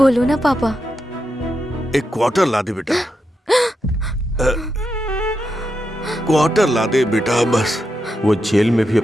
ना पापा। एक क्वार्टर ला दे बेटा। क्वार्टर ला दे बेटा बस। वो जेल में भी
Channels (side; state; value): both; normal; correlation 0.86